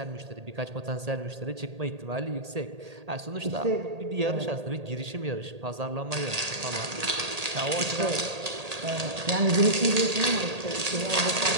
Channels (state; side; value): late; left; 1.8 ms